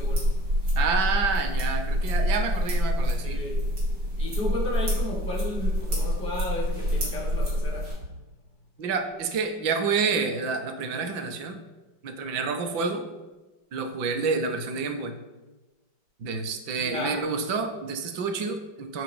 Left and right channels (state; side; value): late; left; 5.2 ms